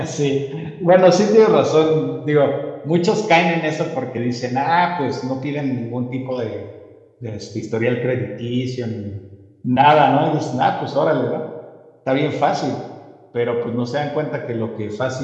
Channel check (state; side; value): identical; both; correlation 1.00